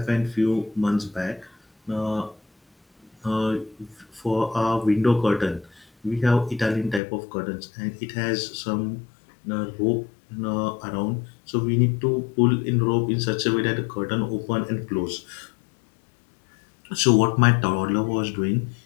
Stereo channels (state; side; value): drops out; right; at 7.0 s